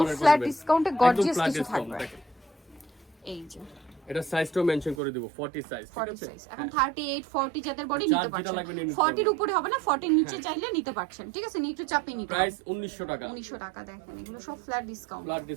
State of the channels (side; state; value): left; drops out; at 5.0 s